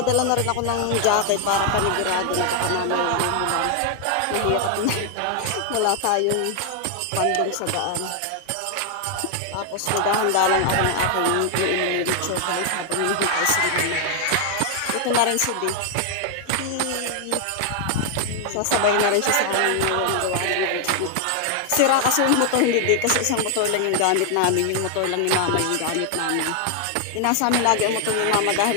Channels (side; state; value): both; different; correlation 0.00